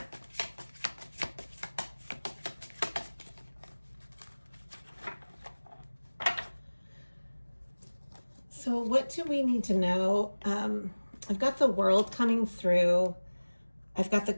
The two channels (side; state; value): both; inverted; correlation -1.00